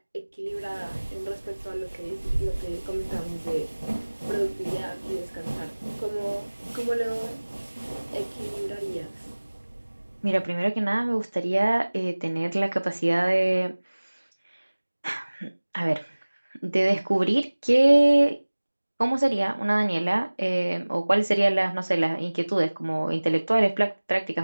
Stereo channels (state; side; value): inverted; both; correlation -1.00